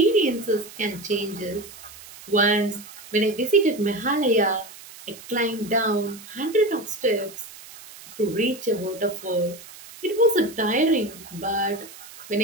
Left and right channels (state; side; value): noise; right; hiss, 18 dB below the sound